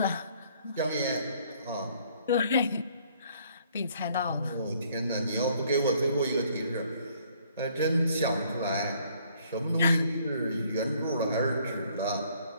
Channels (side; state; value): both; inverted; correlation -0.62